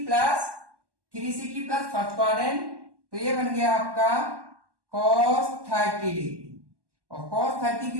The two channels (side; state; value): left; late; 1.1 ms